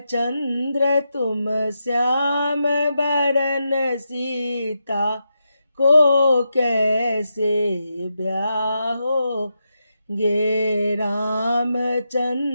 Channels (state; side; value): inverted; both; correlation -0.86